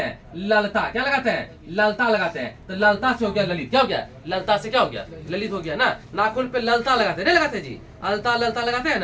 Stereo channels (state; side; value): identical; both; correlation 1.00